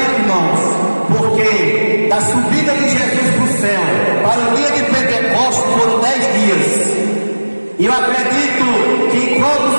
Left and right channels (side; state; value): both; inverted; correlation -1.00